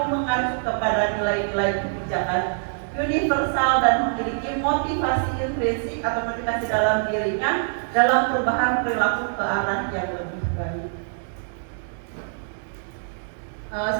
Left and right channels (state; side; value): silent; left; digital silence